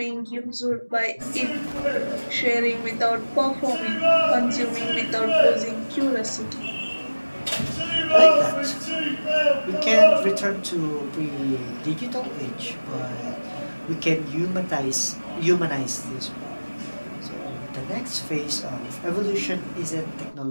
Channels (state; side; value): inverted; both; correlation -1.00